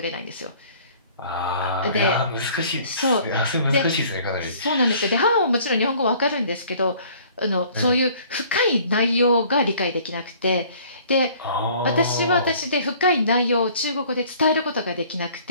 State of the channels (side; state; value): both; inverted; correlation -0.54